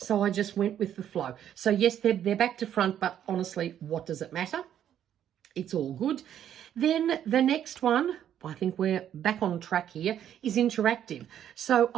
I just went with the flow. So yes, they're back to front, but honestly, what does it matter? It's all good. Then the next one, I think we're back on track here, is interactive. So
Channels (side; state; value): left; quieter; 10.2 dB